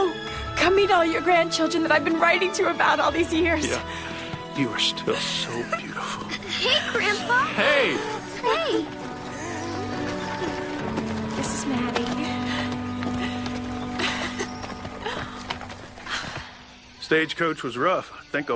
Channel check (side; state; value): both; identical; correlation 1.00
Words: meet all your grandchildren that I've been writing to about all these years. Yeah, you are still so beautiful. Hey, Grandpa. Hey! Hey. This is Maddie. Stagecoach was rough. I think